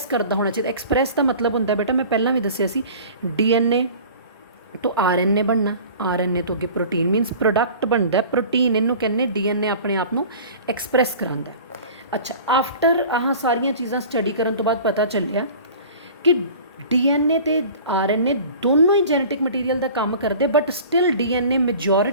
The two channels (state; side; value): inverted; both; correlation -0.42